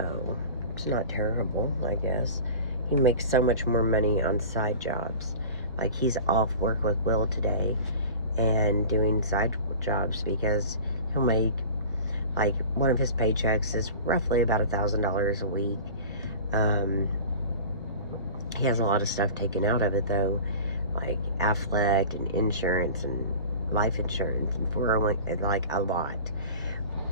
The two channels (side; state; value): both; inverted; correlation -0.38